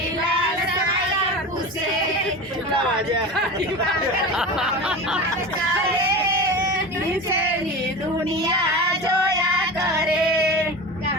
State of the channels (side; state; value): both; normal; correlation 0.29